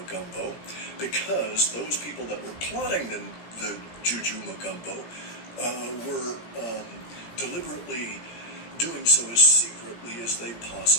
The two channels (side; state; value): right; late; 17 ms